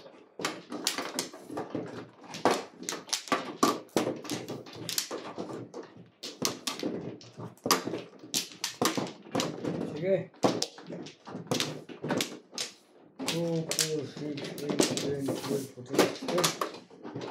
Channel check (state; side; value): identical; both; correlation 1.00